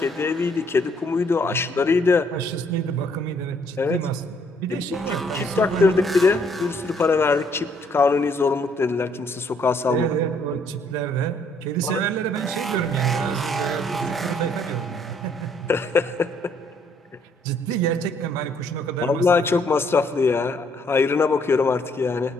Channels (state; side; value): normal; both; correlation 0.67